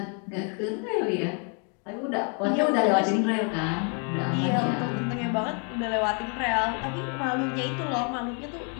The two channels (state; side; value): quieter; right; 38.5 dB